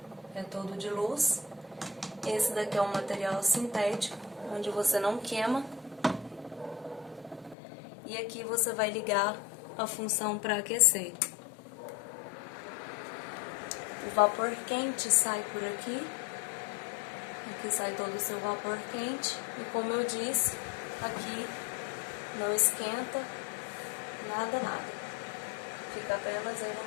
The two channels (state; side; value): drops out; right; at 7.6 s